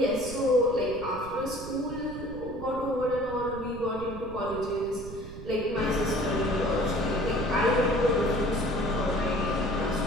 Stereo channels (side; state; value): right; noise; rumble, 13 dB below the sound